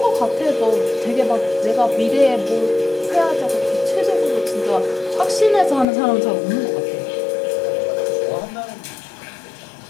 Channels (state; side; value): drops out; right; at 5.9 s